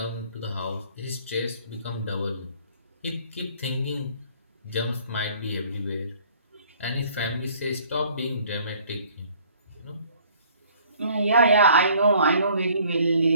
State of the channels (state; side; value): inverted; both; correlation -0.56